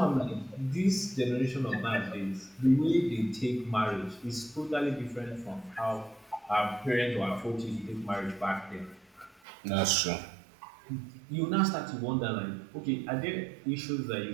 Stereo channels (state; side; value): drops out; left; at 9.4 s